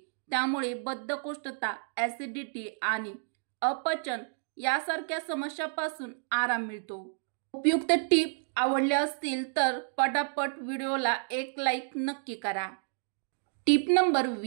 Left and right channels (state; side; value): silent; left; digital silence